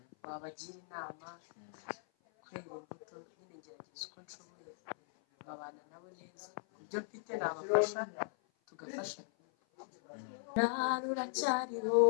wabagira inama, kwera imbuto. Nyine ngerageza uko nshoboye babana nabo neza, ku byo mfite nabafasha, tugafashanya. Ruracyariho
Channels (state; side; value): silent; right; 52 dB below the other